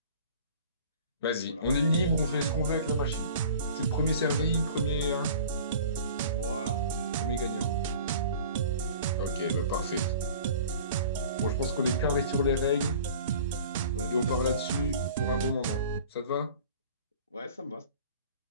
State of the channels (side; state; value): both; inverted; correlation -0.44